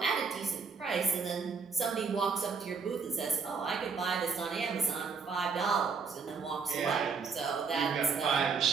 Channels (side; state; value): left; quieter; 5.3 dB